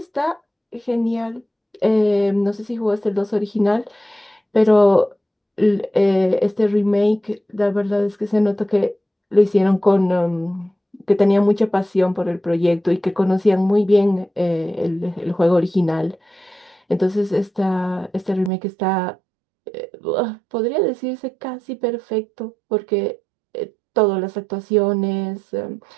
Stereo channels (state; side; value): drops out; left; at 18.5 s